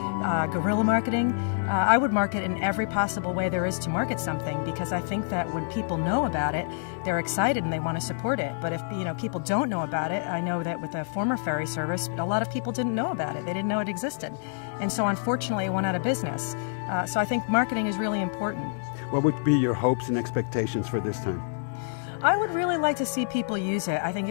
guerrilla marketing. I would market in every possible way there is to market something because I think that when people know about it, they're excited and they want to support it. But if people don't know about it, I know that with the former ferry service, a lot of people didn't know about it. They didn't know it existed. And so unfortunately it went out of business. So I think marketing is really important. What would be your hopes and expectations for this time? I would really like to see people use it. I think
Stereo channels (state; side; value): silent; right; digital silence